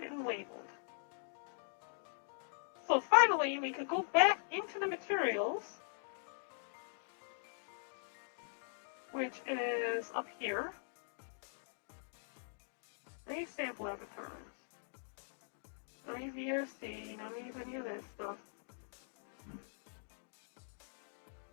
and labeled. So finally, we could go back into the materials, which is up here. Any sample avatars. No VRC, no any of that stuff.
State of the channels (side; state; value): right; silent; digital silence